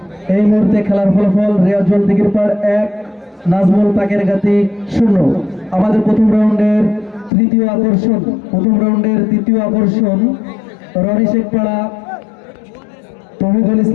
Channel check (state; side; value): drops out; right; at 7.3 s